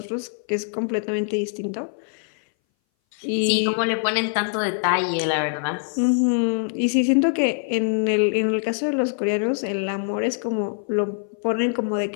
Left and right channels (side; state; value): right; silent; 60 dB below the other